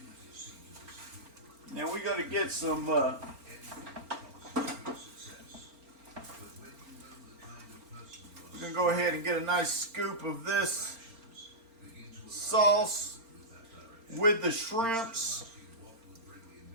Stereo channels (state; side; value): late; left; 4.4 ms